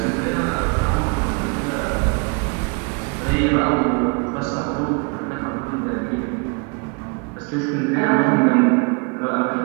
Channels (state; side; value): quieter; left; 33.5 dB